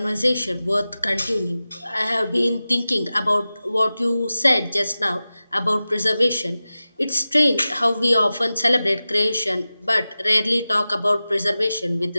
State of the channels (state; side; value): inverted; both; correlation -0.95